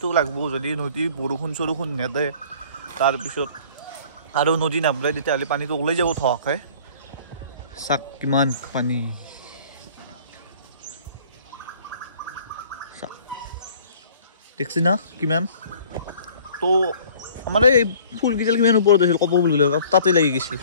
লাগব যদি নদী বৰষুণ চৰষুণ নেদে তাৰপিছত আৰু নদী নাবলে তেতিয়াহ'লে পানীটো ওলাই যাব থকে চাক কিমান পানী দেখছি না কিমান তো আমাৰ এই ফুল কিজাল কিমান ওপৰত আছিল কপ ফুল গিলা তাতে লাগি গৈছিল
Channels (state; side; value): inverted; both; correlation -0.51